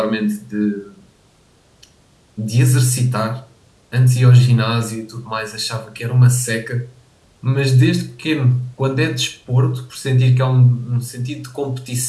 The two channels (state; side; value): identical; both; correlation 1.00